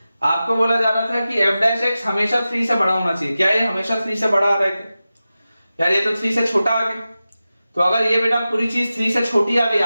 आपको बोला जा रहा था कि f dash x हमेशा 3 से बड़ा होना चाहिए। क्या ये हमेशा 3 से बड़ा आ रहा है? यार ये तो 3 से छोटा आ गया। तो अगर ये बेटा पूरी चीज 3 से छोटी आ गई,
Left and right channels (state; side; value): inverted; both; correlation -0.94